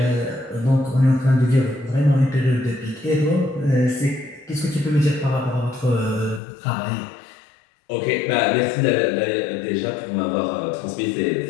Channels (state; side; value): drops out; right; at 6.4 s